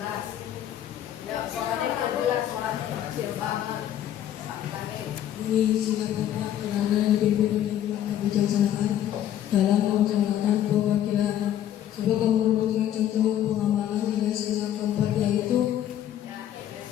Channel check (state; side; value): quieter; right; 11.2 dB